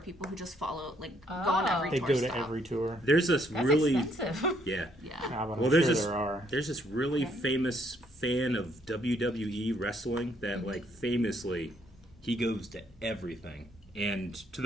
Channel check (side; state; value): both; normal; correlation 0.69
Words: people who just follow go on every They tour go stop. to every tour. There's this That's really... expensive. Yeah. Yeah. Yeah, but Well, I'm there's sure this there are. there's this really famous fan of WWE wrestling that like famously he goes to everything, and to